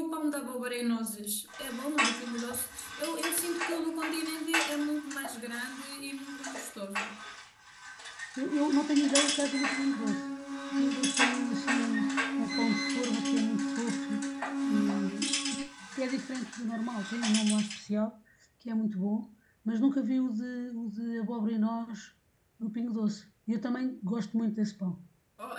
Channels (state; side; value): identical; both; correlation 1.00